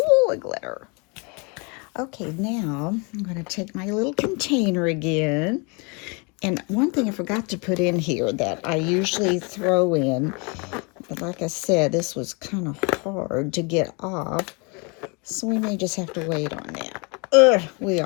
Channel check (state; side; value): quieter; right; 32.0 dB